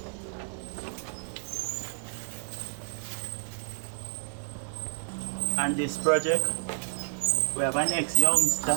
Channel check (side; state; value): left; silent; digital silence